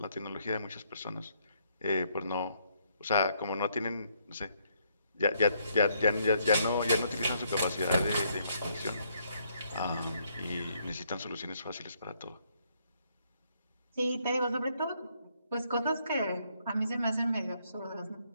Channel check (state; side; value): inverted; both; correlation -0.71